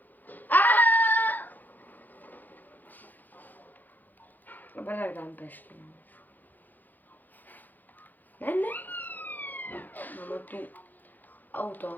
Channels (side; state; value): right; late; 0.085 ms